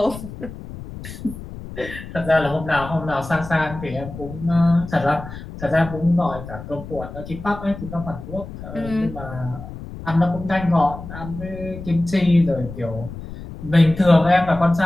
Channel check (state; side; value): noise; left; rumble, 12 dB below the sound